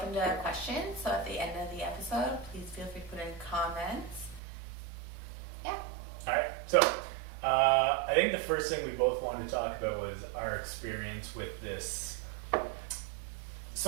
to questions. So at the end of the episode, please feel free to put in comments. Yeah. All right. So I think the first thing we both wanted to talk about was our experience with this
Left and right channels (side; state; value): left; drops out; at 4.4 s